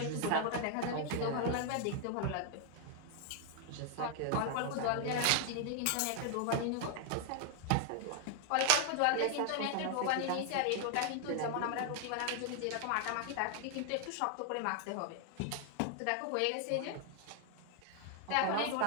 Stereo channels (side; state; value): both; different; correlation 0.00